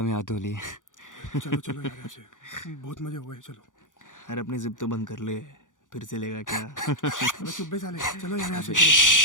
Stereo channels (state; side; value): late; right; 0.87 ms